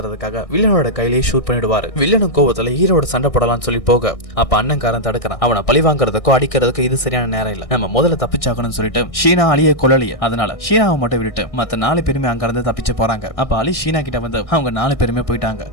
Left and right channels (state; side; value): late; right; 1.7 ms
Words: வில்லனோட கையிலேயே ஷூட் பண்ணிடுவாரு. வில்லனும் கோவத்துல ஹீரோட சண்டை போடலாம்னு சொல்லி போக அப்ப அண்ணன்காரன் தடுக்கிறான். அவனை பழி வாங்குறதுக்கோ அடிக்கிறதுக்கோ இது சரியான நேரம் இல்ல, நம்ம முதல்ல தப்பிச்சாக்கணும்னு சொல்லிட்டு ஷீனா அலியை கொல்லலையே, அதனால ஷீனாவை மட்டும் விட்டுட்டு மத்த 4 பேருமே அங்க இருந்து தப்பிச்சு போறாங்க. அப்ப அலி ஷீனா கிட்ட வந்து அவங்க 4 பேருமே போயிட்டாங்க,